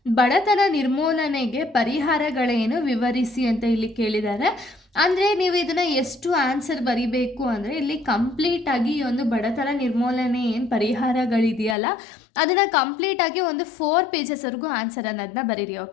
ಬಡತನ ನಿರ್ಮೂಲನೆಗೆ ಪರಿಹಾರಗಳೇನು ವಿವರಿಸಿ ಅಂತ ಇಲ್ಲಿ ಕೇಳಿದ್ದಾರೆ. ಅಂದರೆ ನೀವು ಇದನ್ನು ಎಷ್ಟು ಆನ್ಸರ್ ಬರಿಬೇಕು ಅಂದರೆ ಇಲ್ಲಿ ಕಂಪ್ಲೀಟಾಗಿ ಈ ಒಂದು ಬಡತನ ನಿರ್ಮೂಲನೆ ಏನು ಪರಿಹಾರಗಳಿದೆಯಲ್ಲ ಅದನ್ನು ಕಂಪ್ಲೀಟಾಗಿ ಒಂದು 4 ಪೇಜಸ್ವರೆಗೂ ಆನ್ಸರ್ ಅನ್ನೋದನ್ನ ಬರೀರಿ,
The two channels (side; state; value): right; drops out; at 11.8 s